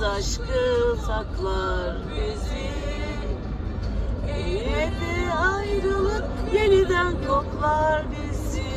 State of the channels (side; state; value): both; identical; correlation 1.00